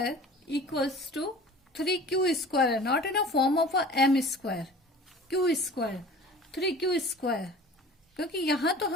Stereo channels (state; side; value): normal; both; correlation 0.42